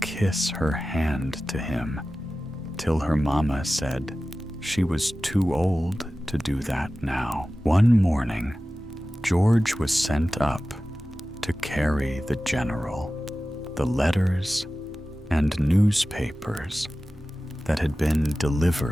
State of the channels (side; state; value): both; normal; correlation 0.95